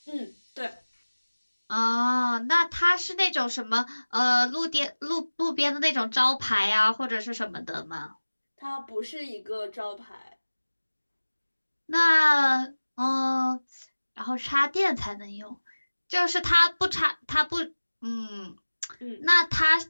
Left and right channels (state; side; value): inverted; both; correlation -1.00